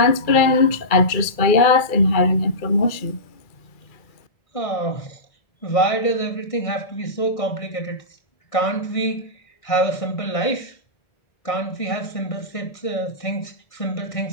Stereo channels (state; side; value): late; right; 2.3 ms